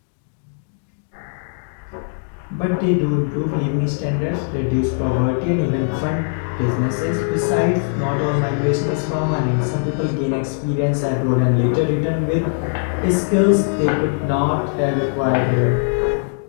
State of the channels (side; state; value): right; silent; 66 dB below the other